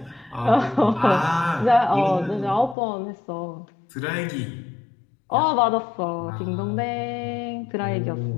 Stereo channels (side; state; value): right; drops out; at 2.8 s